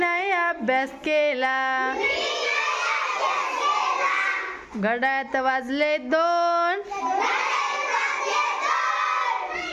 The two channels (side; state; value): both; identical; correlation 1.00